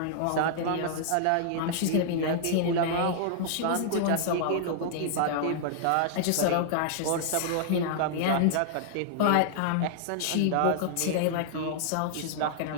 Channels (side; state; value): both; different; correlation -0.01